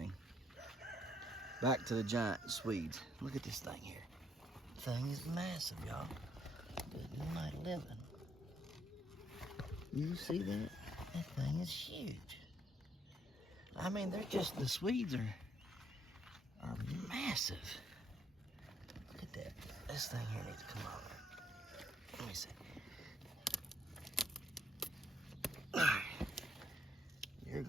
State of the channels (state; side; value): normal; both; correlation 0.70